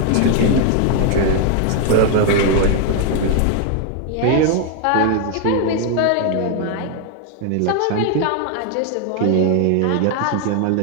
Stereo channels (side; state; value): both; different; correlation 0.01